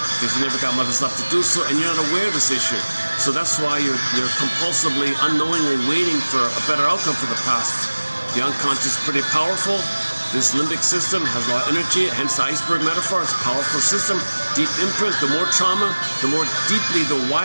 because you never got mother's love to do so, and you're not aware of this issue. So that's why you're compulsively, unknowingly waiting for a better outcome for the past. The unconscious is pretty powerful. This limbic system has a lot of energy, hence the iceberg metaphor. It's a powerful system, deep imprint. The more trauma, the more deeply the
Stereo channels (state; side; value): inverted; both; correlation -1.00